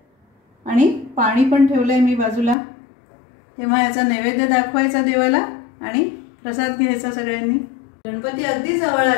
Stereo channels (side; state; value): right; drops out; at 2.6 s